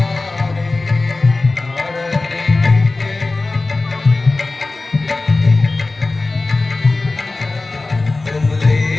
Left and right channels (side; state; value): right; quieter; 3.3 dB